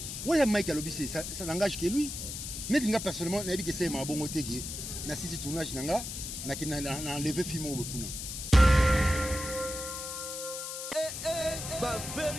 Ouais, Mike Alobissé, ça n'engage que lui. Mais il personnellement, n'a que c'est ma bonne côté qui na sisi tournage nanga, na qui na enlevé film au Bokuna. Ba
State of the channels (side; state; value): left; noise; hiss, 6 dB below the sound